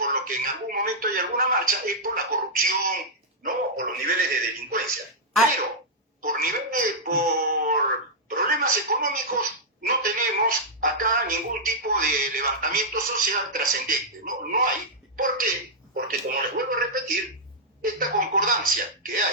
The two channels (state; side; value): normal; both; correlation -0.08